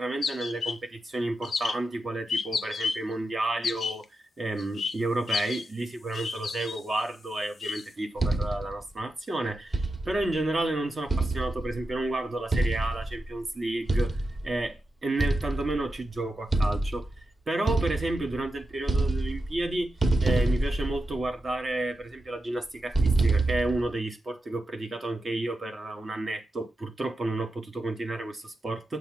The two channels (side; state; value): both; normal; correlation 0.89